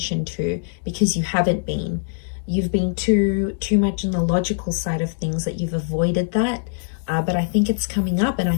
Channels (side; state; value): right; silent; digital silence